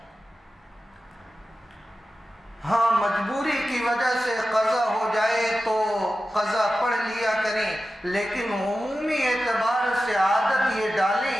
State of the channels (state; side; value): normal; both; correlation 0.93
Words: ہاں مجبوری کی وجہ سے قضا ہو جائے تو قضا پڑھ لیا کریں، لیکن عمومی اعتبار سے عادت یہ ڈالیں